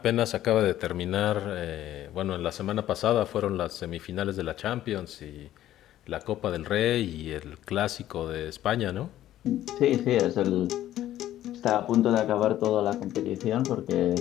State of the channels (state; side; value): quieter; right; 13.1 dB